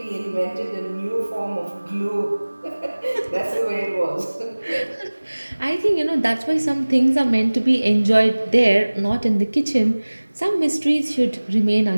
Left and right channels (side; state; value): both; inverted; correlation -1.00